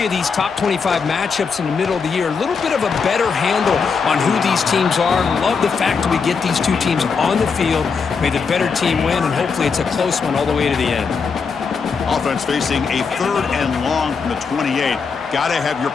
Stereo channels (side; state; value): right; quieter; 5.4 dB